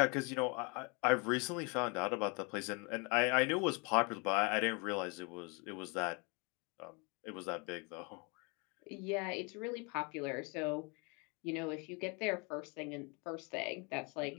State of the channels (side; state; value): right; quieter; 31.4 dB